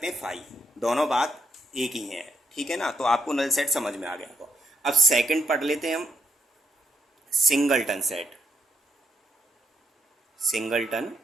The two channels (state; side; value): normal; both; correlation 0.77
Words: हैं फाई, दोनों बात एक ही है, ठीक है ना। तो आपको नल सेट समझ में आ गया होगा। अब सेकंड पढ़ लेते हैं हम, सिंगलटन सेट। सिंगलटन